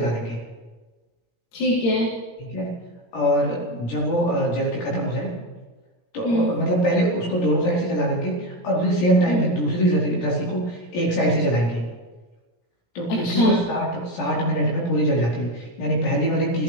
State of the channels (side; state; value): right; late; 17 ms